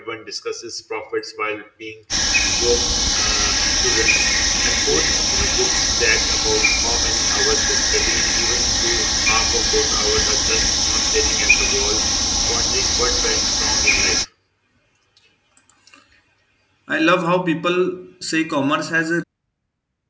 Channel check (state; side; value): identical; both; correlation 1.00